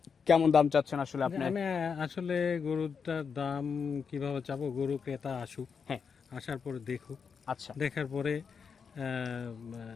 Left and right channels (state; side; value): quieter; right; 6.1 dB